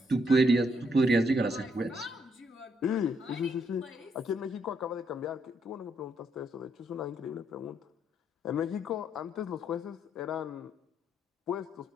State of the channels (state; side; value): normal; both; correlation 0.74